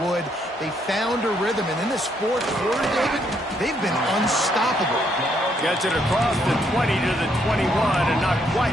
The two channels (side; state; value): both; normal; correlation 0.73